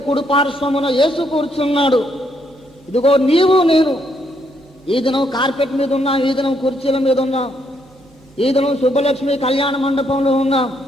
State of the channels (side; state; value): both; normal; correlation 0.74